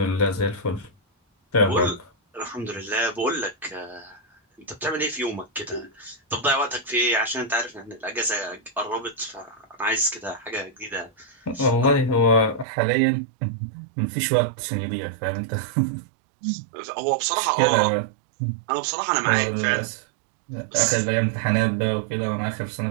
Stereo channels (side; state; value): left; drops out; at 12.7 s